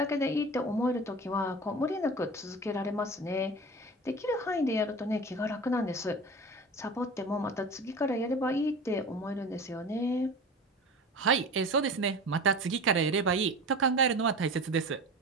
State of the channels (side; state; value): both; normal; correlation 0.34